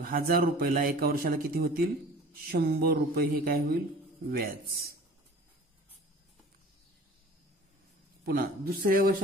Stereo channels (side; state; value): both; normal; correlation 0.44